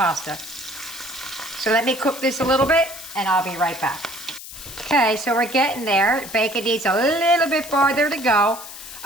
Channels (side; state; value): left; noise; hiss, 13 dB below the sound